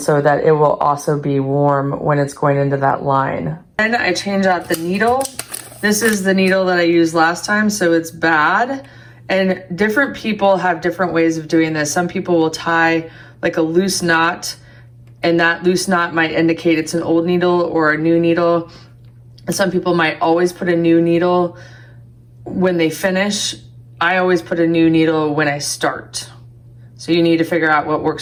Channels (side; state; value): both; identical; correlation 1.00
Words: so that it will also be warm when it's going into that line. Then I change out the needle. This is the needle that I used last time, so it's bad. And different people have different ways of doing this. Some people will tie like a loose knot, and that loose knot might indicate it's an old needle or a new needle. And some people might always put a new needle when they finish. I always put a new needle when I start. So you need to figure out what